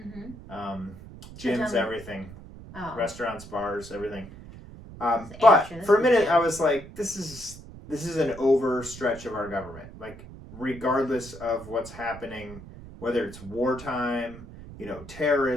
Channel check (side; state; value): right; noise; rumble, 16 dB below the sound